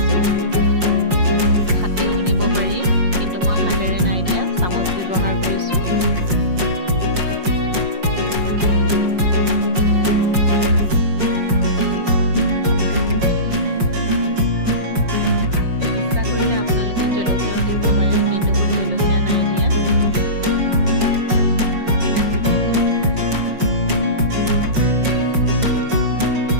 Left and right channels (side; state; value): left; late; 5.6 ms